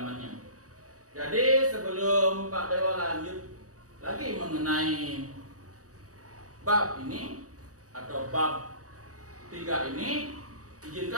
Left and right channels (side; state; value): left; late; 0.66 ms